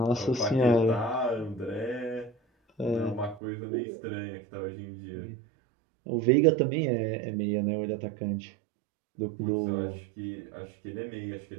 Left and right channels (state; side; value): drops out; left; at 3.4 s